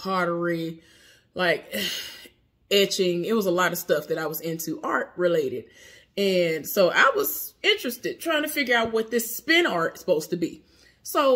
like etching. It was a lot of stuff that I was into art related. And so I was interested, trying to figure out what this spin art is supposed to be.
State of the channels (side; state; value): both; identical; correlation 1.00